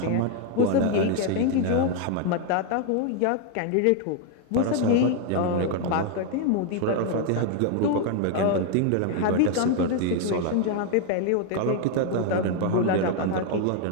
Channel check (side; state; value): both; different; correlation 0.00